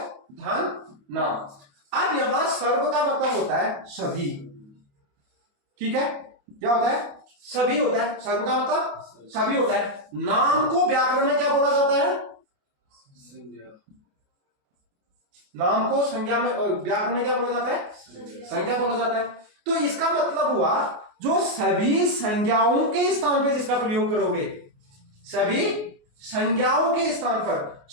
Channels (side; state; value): left; late; 28 ms